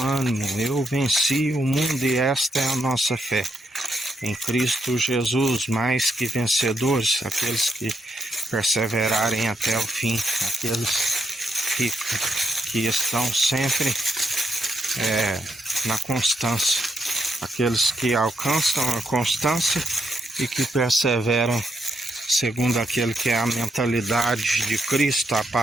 ânimo, eu venci o mundo e esta é a nossa fé. Em Cristo Jesus, mais que vencedores, aqueles que perseverarem até o fim, aqueles que estão sempre na constância, aqueles que alcançam a constância e que perseveram segundo aquele que é a mentalidade de Cristo, a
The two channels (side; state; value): both; normal; correlation 0.79